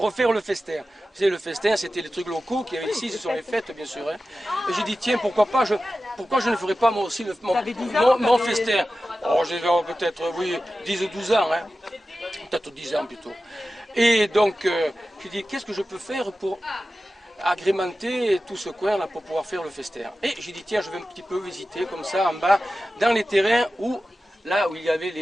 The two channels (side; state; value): both; normal; correlation 0.94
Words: le festin. Vous savez, le festin, c'était les trucs locaux qu'il y avait ici, ce sont les fêtes, bien sûr. Hein. Et j'ai dit, tiens, pourquoi je ne ferais pas moi aussi mon festin. Oh, j'ai peut-être, oui, 10 ou 12 ans, hein. Peut-être 10 ans plutôt. Et donc, j'ai dit, qu'est-ce que je peux faire pour agrémenter tout ce coin là pour pouvoir faire le festin. Et j'ai dit tiens, je vais un petit peu visiter comme ça en bas dans les terrains où là où il y avait